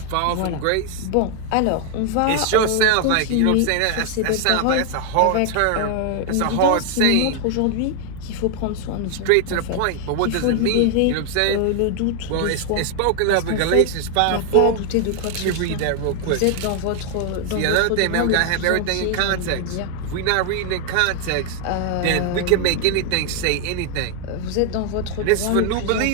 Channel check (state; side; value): different; both; correlation 0.00